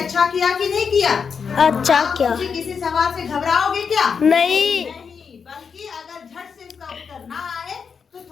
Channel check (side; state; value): right; quieter; 6.1 dB